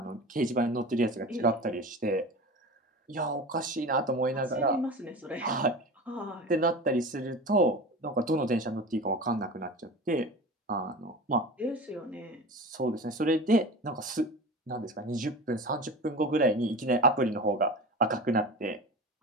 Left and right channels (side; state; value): both; normal; correlation 0.32